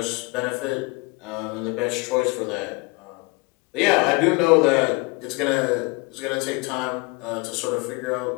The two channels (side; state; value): right; quieter; 27.1 dB